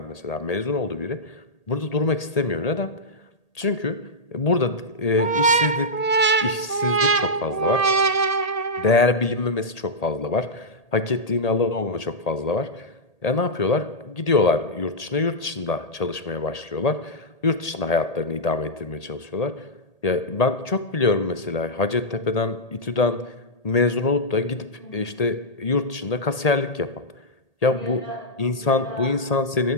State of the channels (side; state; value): right; late; 1.8 ms